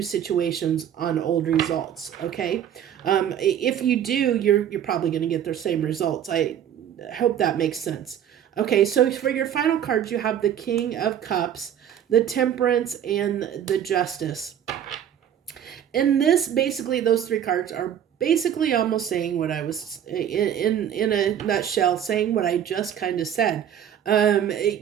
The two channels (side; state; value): left; quieter; 9.7 dB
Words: situations on old results. Okay. If you do, you're probably going to get the same results. I hope that makes sense. Okay. So for your final cards, you have the King of Cups, the Temperance, and the Justice. And basically, those three cards are basically almost saying what I was, in a nutshell, saying what I just kind of said.